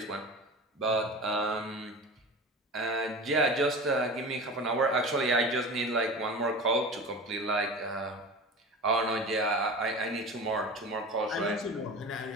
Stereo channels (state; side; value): normal; both; correlation 0.33